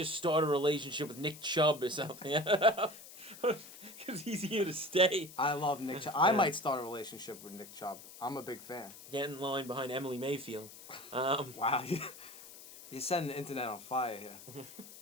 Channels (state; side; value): noise; left; hiss, 16 dB below the sound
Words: start a relationship with Nick Chubb or something. Because he's here to stay. I love Nick Chubb. I might start a relationship with Nick Chubb. I'm a big fan. Get in line behind Emily Mayfield. Wow. You're setting the internet on fire here.